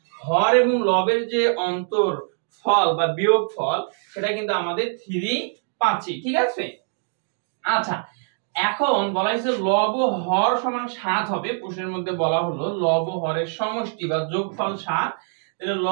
হর এবং লবের যে অন্তর ফল বা বিয়োগ ফল সেটা কিন্তু আমাদের 3 পাচ্ছি, ঠিক আছে। আচ্ছা, এখন বলা হয়েছে লব ও হর সমান 7 হবে, প্রশ্নের মধ্যে বলা হলো লব ও হরের সমষ্টি বা যোগফল 7, তাহলে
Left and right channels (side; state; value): left; silent; 63 dB below the other